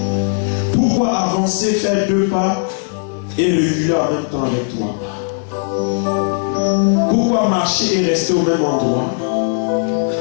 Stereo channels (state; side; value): silent; right; 68 dB below the other